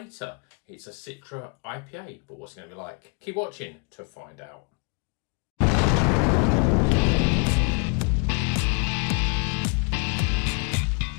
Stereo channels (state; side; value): quieter; right; 36.3 dB